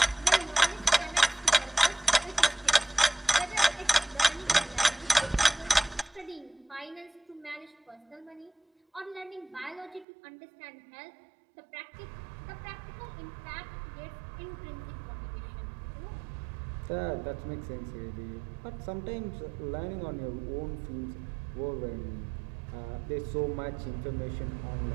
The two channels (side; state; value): left; drops out; at 10.1 s